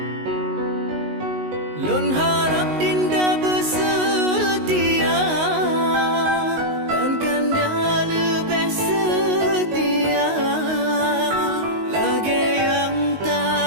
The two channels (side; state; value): left; late; 19 ms